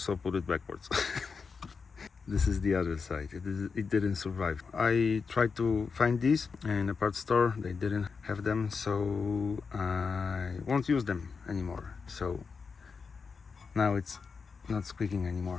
put it backwards. This is the other side. It didn't survive. I tried to find these in a parts store. They didn't have them, so I won't use them anymore. So now it's not squeaking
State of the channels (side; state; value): right; quieter; 5.2 dB